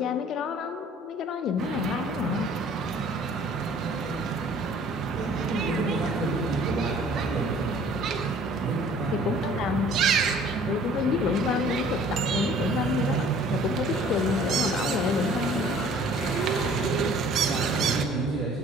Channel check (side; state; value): both; normal; correlation 0.53